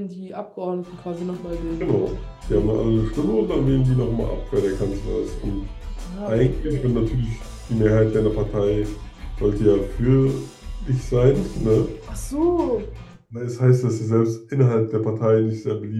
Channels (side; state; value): both; identical; correlation 1.00